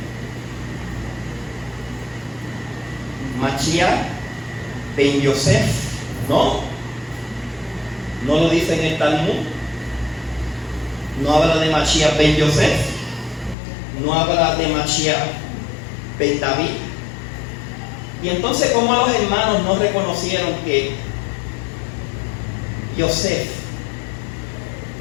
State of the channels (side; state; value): right; drops out; at 13.6 s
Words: Mashiach ben Yosef, ¿no? No lo dice en el Talmud. No habla de Mashiach ben Yosef. No habla de Mashiach ben David. Y entonces, ¿cómo los hermanos no reconocieron que Yosef